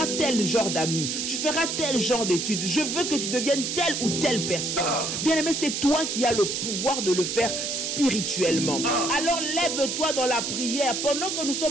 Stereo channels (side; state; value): right; noise; hiss, 2 dB below the sound